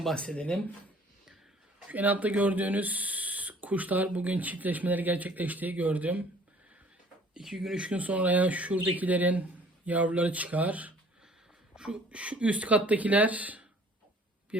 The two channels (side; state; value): both; normal; correlation 0.54